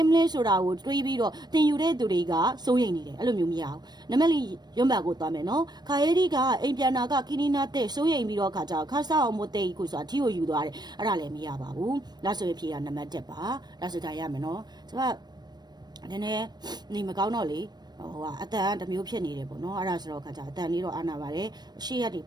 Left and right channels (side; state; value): left; late; 0.20 ms